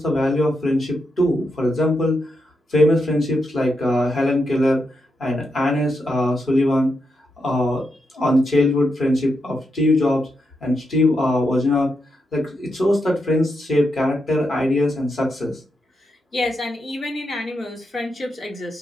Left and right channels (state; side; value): normal; both; correlation 0.84